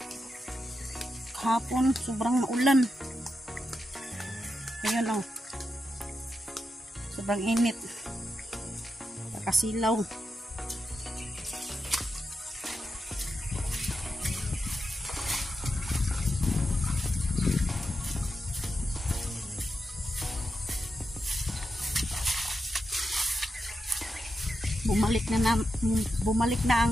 Kahapon, sobrang maulan. Ngayon o, sobrang init. Kasilaw. Bumalik na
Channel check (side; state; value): both; normal; correlation 0.87